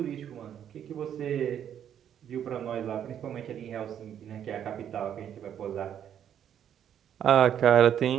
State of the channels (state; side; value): quieter; left; 9.5 dB